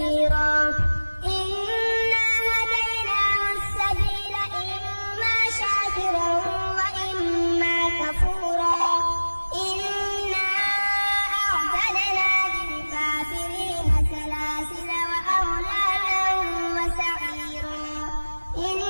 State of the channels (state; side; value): inverted; both; correlation -1.00